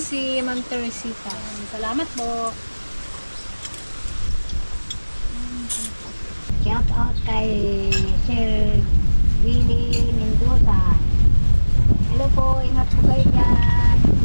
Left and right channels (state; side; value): inverted; both; correlation -1.00